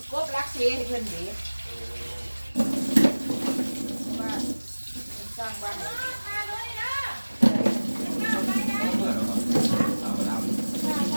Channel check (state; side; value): inverted; both; correlation -1.00